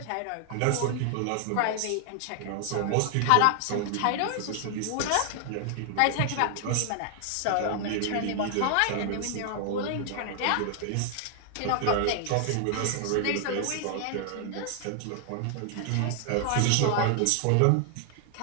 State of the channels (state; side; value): different; both; correlation 0.00